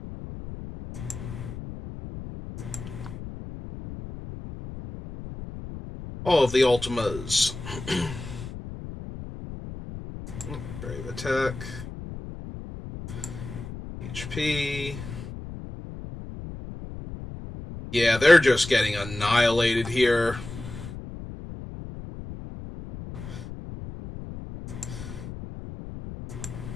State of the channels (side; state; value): left; noise; rumble, 10 dB below the sound